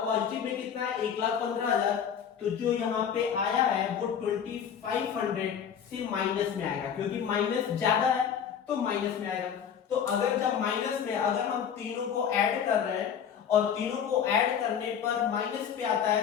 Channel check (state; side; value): quieter; right; 8.0 dB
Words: पॉजिटिव में कितना है 1,15,000, तो जो यहाँ पे आया है वो 2,500 से माइनस में आएगा, क्योंकि माइनस ज्यादा है तो माइनस में आएगा, तो अगर जब माइनस में अगर हम तीनों को ऐड कर रहे हैं और तीनों को ऐड करने पर माइनस पे आता